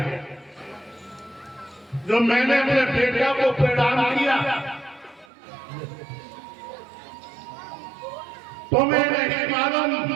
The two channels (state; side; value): drops out; left; at 5.2 s